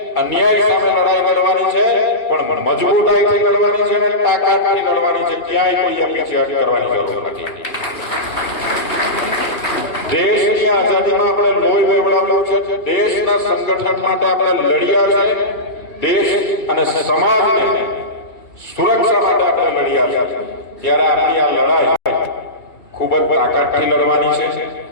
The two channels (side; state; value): right; late; 2.4 ms